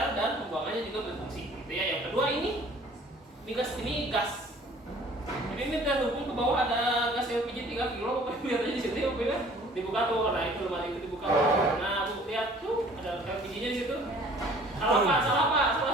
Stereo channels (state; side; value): normal; both; correlation 0.52